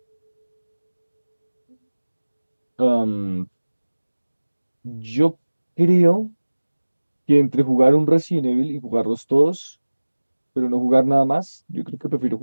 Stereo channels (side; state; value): both; inverted; correlation -1.00